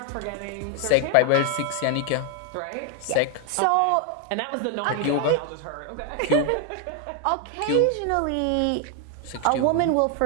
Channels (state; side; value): different; both; correlation 0.01